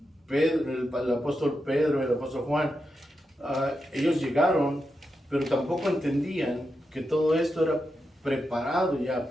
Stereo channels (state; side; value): normal; both; correlation 0.87